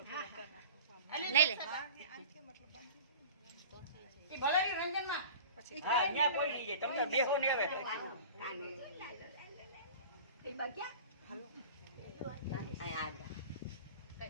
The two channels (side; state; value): both; inverted; correlation -0.40